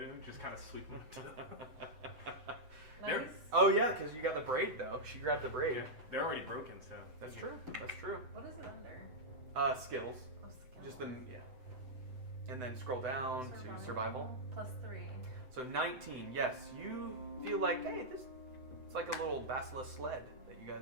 Just kind of sweep them. Nice. Oh yeah, because you got the braid though. She grabbed the braid. They're already broken, so. That's true. That's true. What is it under? Skills. Oh, skills. Just the yeah. And then scroll down to survival. Plus 3. So 19. Yes, you feel like it's like a little basilisk sled that you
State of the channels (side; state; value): left; late; 7.9 ms